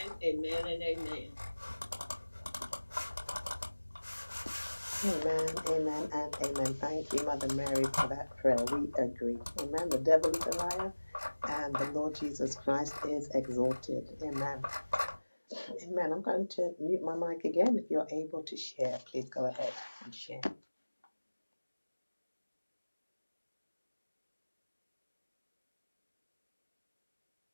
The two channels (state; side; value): inverted; both; correlation -1.00